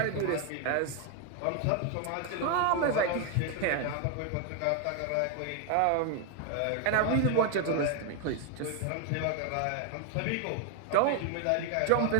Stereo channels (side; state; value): both; different; correlation 0.00